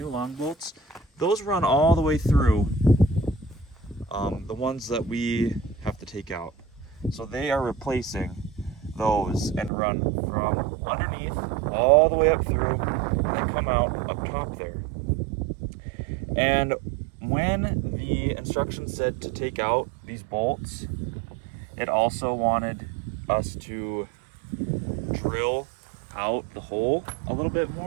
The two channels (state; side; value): drops out; left; at 9.7 s